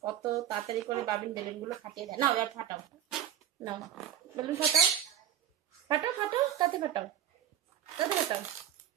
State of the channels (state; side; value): quieter; left; 10.2 dB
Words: কত তাড়াতাড়ি করে বাবিন বেলুনগুলো ফাটিয়ে দেয়। না এবার ফাটাও, নাও বেলুন ফাটাও, ফাটাও ফাটাও, তাতে ফাটাও, তাতে ফাটাও।